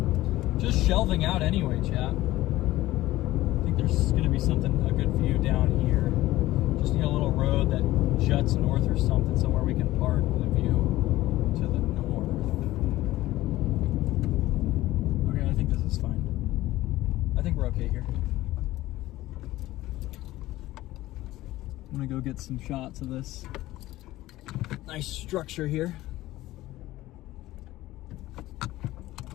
Just shelving out anyway, chat. I think there's gonna be a good view down here. Just need a little road that juts north or something, somewhere we can park with a view to the north. Okay, I think this is fine. I think we're okay here. I'm gonna go get some shots of this nice structure here.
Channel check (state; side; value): quieter; right; 16.5 dB